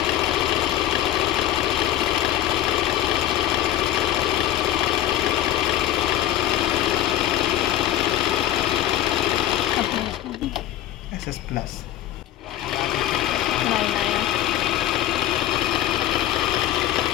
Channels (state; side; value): quieter; right; 12.7 dB